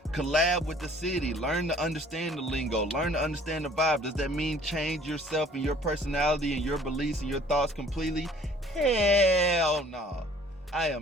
collab with the city. Learn to understand the lingo. Learn to understand the vibe. Does that mean change yourself and your personality and your beliefs and your thoughts completely? Hell no. I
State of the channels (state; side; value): normal; both; correlation 0.54